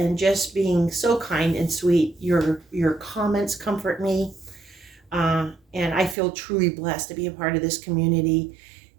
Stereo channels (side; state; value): left; drops out; at 6.2 s